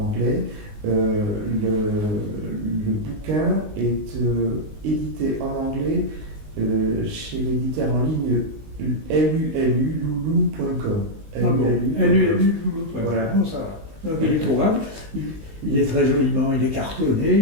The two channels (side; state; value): left; late; 19 ms